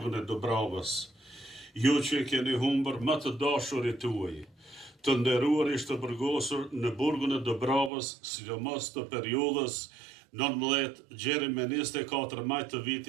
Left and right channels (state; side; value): drops out; left; at 7.9 s